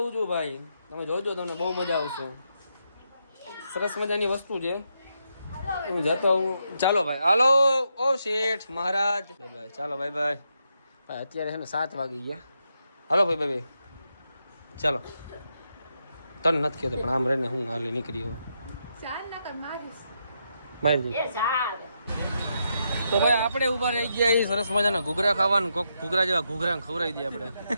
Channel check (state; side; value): inverted; both; correlation -0.82